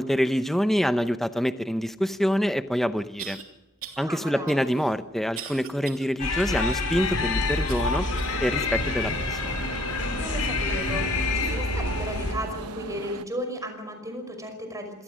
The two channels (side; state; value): both; normal; correlation 0.71